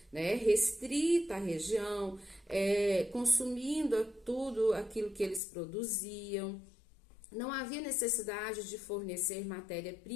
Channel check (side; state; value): right; drops out; at 5.4 s